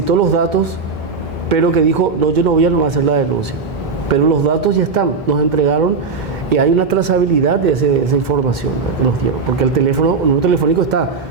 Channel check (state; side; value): quieter; left; 4.7 dB